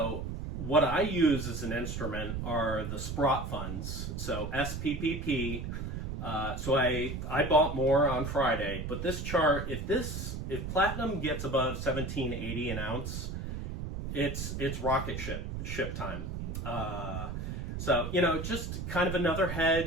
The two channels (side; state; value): right; noise; rumble, 5 dB below the sound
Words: what I use as an instrument are the Sprott funds, so SPPP. So I bought more on Friday, but this chart, if platinum gets above 1780 an ounce, it's rocket ship time. So, just kind of another